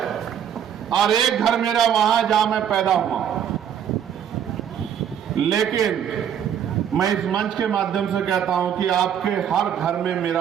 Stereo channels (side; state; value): left; quieter; 9.0 dB